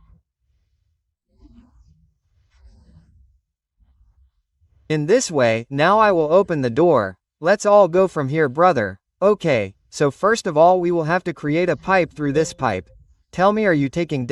In this way, now I will open the door. Let's all go from here, brother. Okay, so first of all we will have to create a pipe through this pipe. Tell me, are you taking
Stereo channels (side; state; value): both; identical; correlation 1.00